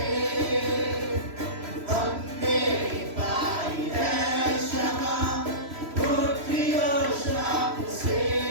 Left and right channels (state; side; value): late; left; 3.0 ms